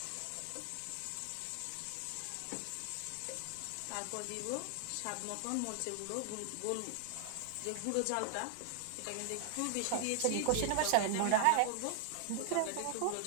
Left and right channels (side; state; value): both; different; correlation 0.00